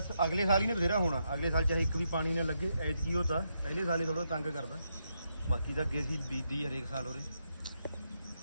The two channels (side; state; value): both; inverted; correlation -0.81